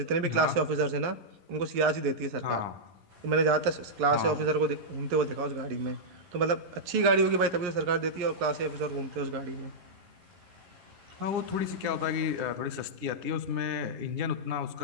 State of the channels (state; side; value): late; left; 11 ms